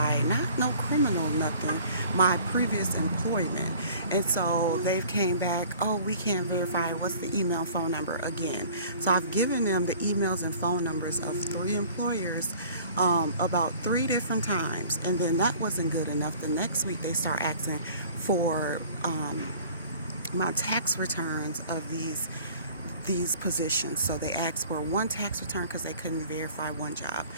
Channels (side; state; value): both; inverted; correlation -0.49